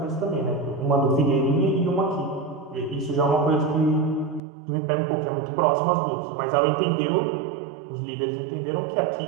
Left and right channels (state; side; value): drops out; left; at 4.4 s